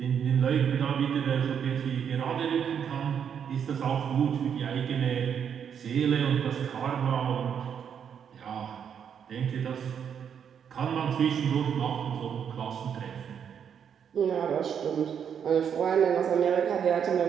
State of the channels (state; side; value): quieter; left; 7.9 dB